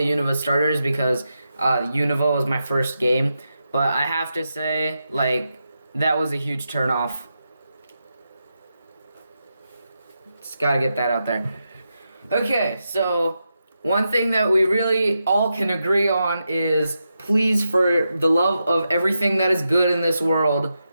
Unova starters because Unova was my first game, but I have to say, that was a huge turnoff. Just gotta get that out there. Okay, so one thing that we really all can agree on is, please, for the love of everything that is good in this world,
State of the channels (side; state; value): both; inverted; correlation -0.87